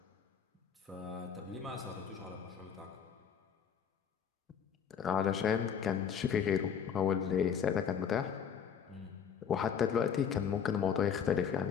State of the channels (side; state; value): right; quieter; 7.5 dB